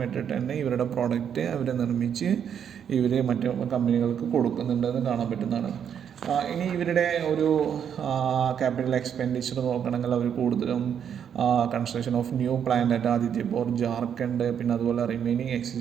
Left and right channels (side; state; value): left; quieter; 8.3 dB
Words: മെട്രിക് ടണ്ണ് ഇവരുടെ പ്രോഡക്റ്റ് അവർ നിർമ്മിച്ച് ഇവർ മറ്റു കമ്പനികൾക്ക് കൊടുക്കുന്നുണ്ടെന്ന് കാണാൻ പറ്റുന്നതാണ്. ഇനി ഇവരുടെ ഒരു ക്യാപിറ്റൽ എക്സ്പെൻഡിച്ചർ നോക്കണമെങ്കിൽ അവർ കൂടുതലും construction of new plant at Adityapur, Jharkhand, പിന്നെ അതുപോലെ റിമൈനിങ്